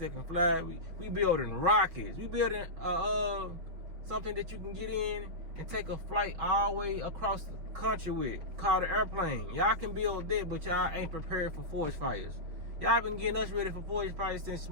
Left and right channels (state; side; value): late; left; 6.2 ms